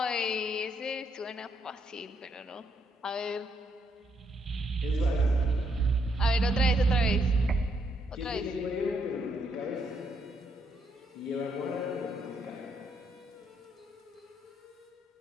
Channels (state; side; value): normal; both; correlation 0.75